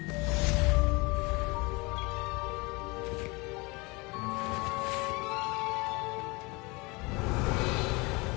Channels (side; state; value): right; quieter; 26.2 dB